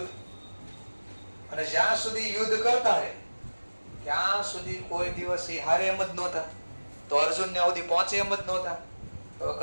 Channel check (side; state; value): both; inverted; correlation -1.00